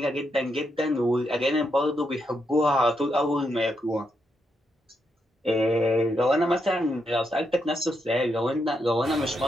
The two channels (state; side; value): normal; both; correlation 0.81